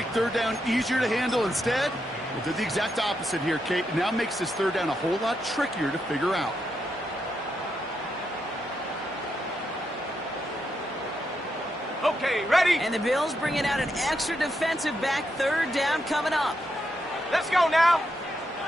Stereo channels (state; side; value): normal; both; correlation 0.82